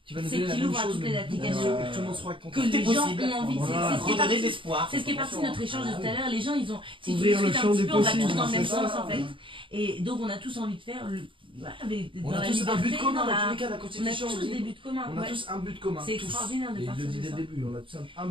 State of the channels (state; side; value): late; left; 0.25 ms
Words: Qui va nous c'est donner la qu'il même ouvre à chose, toutes mais les applications. que tout le monde soit que content. les gens possible. ont envie. Voilà. C'est ce qui est Redonner de parti. l'espoir. C'est ce qui est parti de notre échange de tout à l'heure. Les gens, ils ont. Si tu Ouvrir le discutes un champ petit des peu, on va tous possibles, dans le même c'est sens ça. en fait. Et donc, on a tous envie de faire dans On a la tous un but liberté, commun dans dans tous la. les cas, la On a Constitution. tous des buts communs. On a ouais. tous un but commun. C'est tous. extraordinaire de Et il partir le dit de dès ça. le début, on a tous un